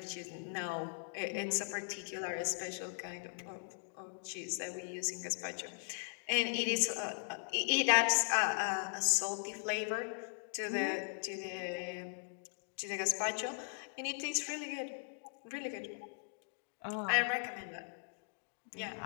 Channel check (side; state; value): right; silent; digital silence